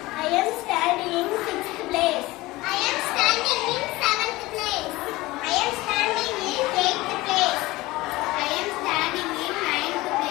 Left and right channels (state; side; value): quieter; right; 19.7 dB